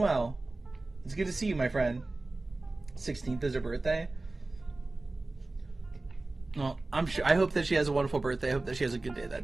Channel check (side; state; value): left; quieter; 3.1 dB